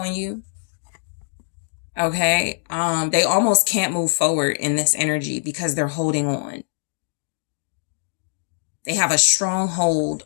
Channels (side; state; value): right; silent; digital silence